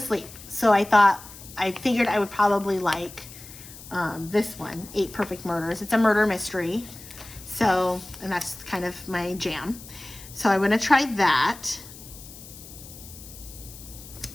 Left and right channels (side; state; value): left; noise; hiss, 17 dB below the sound